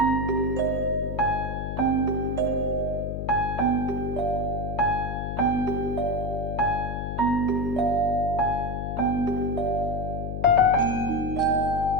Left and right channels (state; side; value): noise; left; hum, 4 dB below the sound